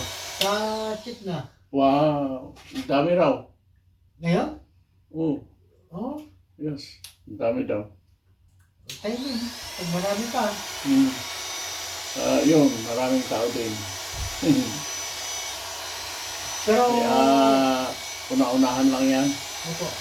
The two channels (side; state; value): both; identical; correlation 1.00